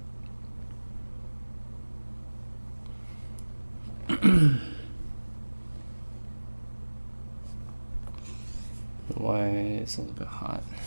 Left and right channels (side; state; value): both; inverted; correlation -1.00